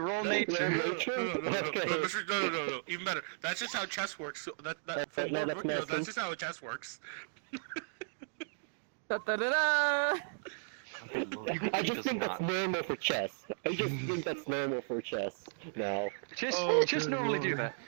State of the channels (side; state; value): left; silent; digital silence